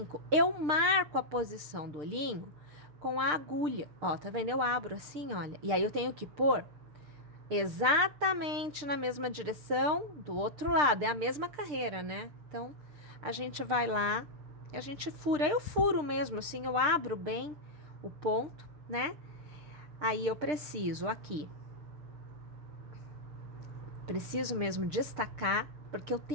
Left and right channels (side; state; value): left; late; 6.7 ms